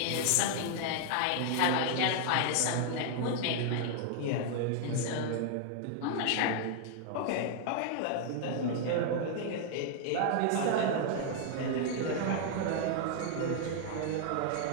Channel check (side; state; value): both; different; correlation 0.00